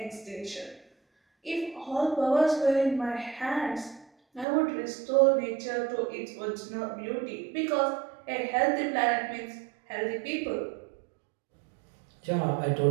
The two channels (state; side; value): drops out; left; at 4.5 s